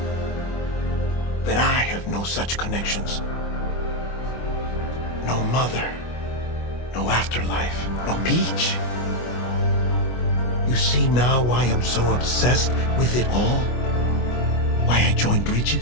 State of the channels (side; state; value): right; late; 24 ms